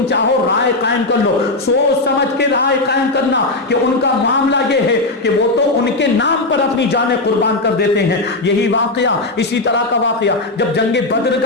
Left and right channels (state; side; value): quieter; right; 3.0 dB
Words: چاہو رائے قائم کر لو, سوچ سمجھ کے رائے قائم کرنا کہ ان کا معاملہ یہ ہے کہ وہ تو ان کے نام پر اپنی جانیں قربان کر دیتے ہیں. یہی واقعہ, اسی طرح کا واقعہ جب جنگ بدر